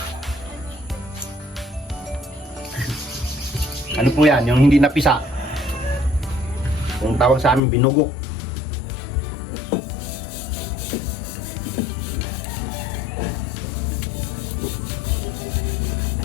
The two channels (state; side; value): drops out; right; at 7.6 s